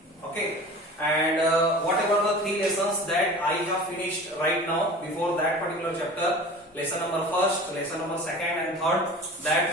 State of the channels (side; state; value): both; normal; correlation 0.39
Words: Okay, and whatever the 3 lessons that I have finished right now before that particular chapter, lesson number 1st, lesson number 2nd and 3rd,